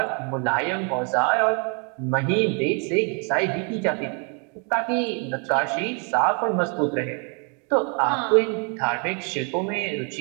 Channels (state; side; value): quieter; left; 36.9 dB